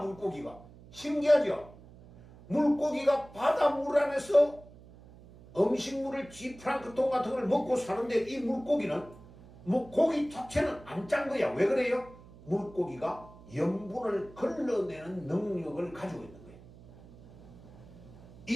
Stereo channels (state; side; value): noise; right; hum, 21 dB below the sound